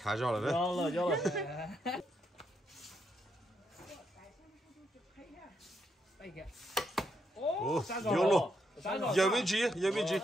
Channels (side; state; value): both; normal; correlation 0.79